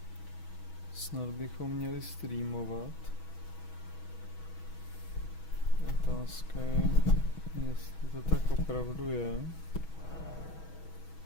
Snad bychom měli streamovat. Otázka je, jestli to tak opravdu je.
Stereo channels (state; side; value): late; right; 6.2 ms